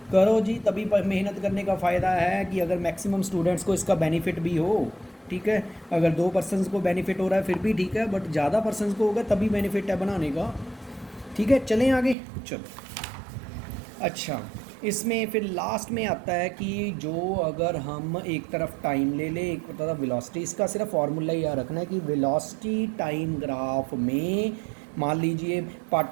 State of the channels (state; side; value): drops out; left; at 12.2 s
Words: करो जी, तभी मेहनत करने का फ़ायदा है कि अगर मैक्सिमम स्टूडेंट्स को इसका बेनिफिट भी हो। ठीक है, अगर 2 पर्सनस को बेनिफिट हो रहा है फिर भी ठीक है, बट ज़्यादा पर्सनस को होगा तभी बेनिफिट है बनाने का। ठीक है, चलें आगे। चलो अच्छा, इसमें फिर लास्ट में आता है कि जो अगर हम एक तरफ टाइम ले लें, एक तरफ वेलोसिटी, इसका सिर्फ फार्मूला याद रखना है कि वेलोसिटी टाइम ग्राफ में मान लीजिए